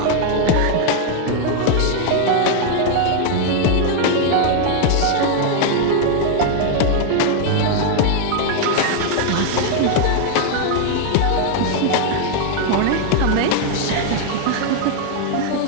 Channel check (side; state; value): both; different; correlation 0.00